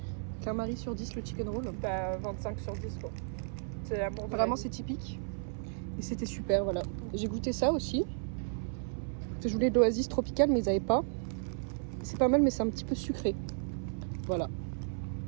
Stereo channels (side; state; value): left; silent; 55 dB below the other